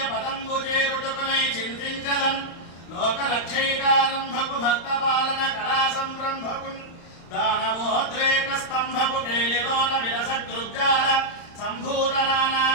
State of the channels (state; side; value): late; right; 35 ms